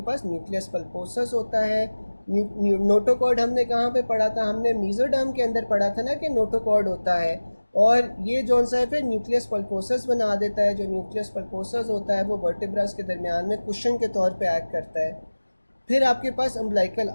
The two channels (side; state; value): both; inverted; correlation -1.00